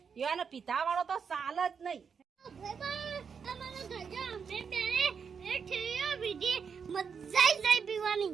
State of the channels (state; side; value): quieter; left; 6.3 dB